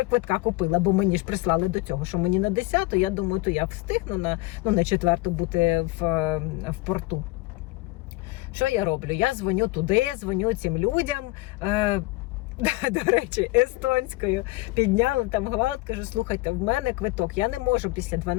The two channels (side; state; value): right; quieter; 21.3 dB